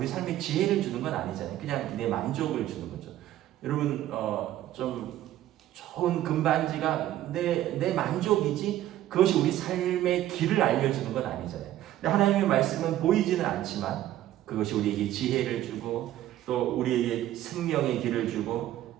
삶에 지혜를 주는 건 아니잖아요. 그냥 내 만족을 주는 거죠. 여러분, 좀 좋은 금반지가 내 만족이지 그것이 우리 삶의 길을 알려주는 건 아니잖아요. 근데 하나님의 말씀은 보이지는 않지만 그것이 우리에게 지혜를 주고 또 우리에게 생명의 길을 주고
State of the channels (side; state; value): left; quieter; 13.3 dB